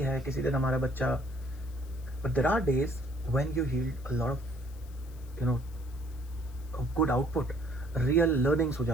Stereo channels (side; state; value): left; noise; hiss, 25 dB below the sound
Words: किसी दिन हमारा बच्चा, but there are days when you yield a lot of you know good output, real learnings हो